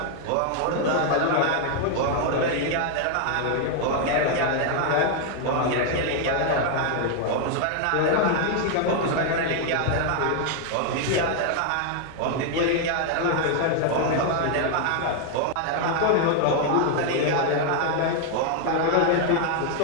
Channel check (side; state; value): both; different; correlation 0.00